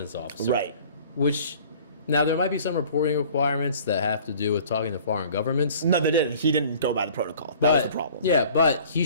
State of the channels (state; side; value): inverted; both; correlation -0.49